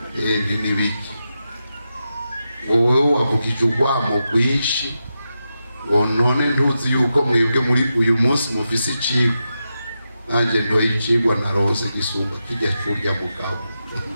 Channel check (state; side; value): inverted; both; correlation -0.88